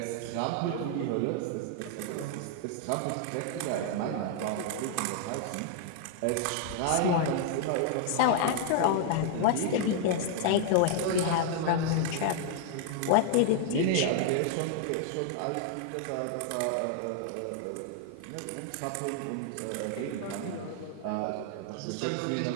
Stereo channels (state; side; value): different; both; correlation 0.00